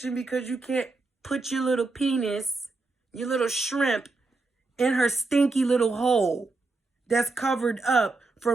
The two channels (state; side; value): quieter; left; 3.5 dB